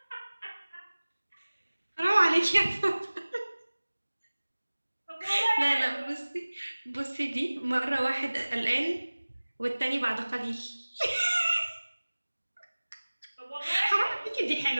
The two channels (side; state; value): both; inverted; correlation -1.00